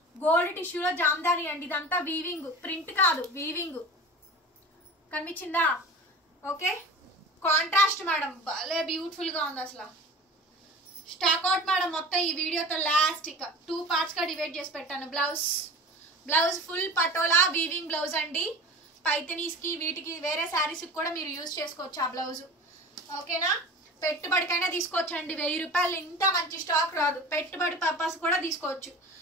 గోల్డ్ టిష్యూలో జామ్దాని అండి. ఇదంతా వీవింగ్, ప్రింట్ కాదు, వీవింగ్. కనిపించిందా? ఓకే, కాంట్రాస్ట్ మేడం, భలే బ్యూటిఫుల్ గా ఉంది అసలు. స్టాక్ అవుట్ మేడం మొత్తం ఈ వీడియోతో లాస్ట్ ఇక 2 పార్ట్స్ గా డివైడ్ చేసి పెట్టాను. Blouse, blouse full patola weaving blouse అండి. పైతనీస్ కి వీటికి వేరే శారీస్ కూడా మీరు యూజ్ చేసుకోవచ్చు ఆ బ్లౌజ్. ఓకేనా, పెట్టుబడికైనా తీసుకోవచ్చు అండి. 1000 రూపాయలు ఇంత మంచి స్టాక్ రాదు, పెట్టుబడి పర్పస్ కూడా తీసుకోవచ్చు.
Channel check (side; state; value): both; normal; correlation 0.36